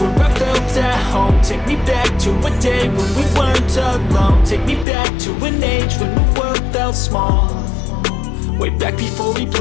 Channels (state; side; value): drops out; right; at 4.9 s